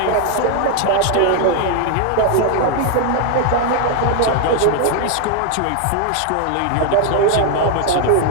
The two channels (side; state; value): both; different; correlation 0.01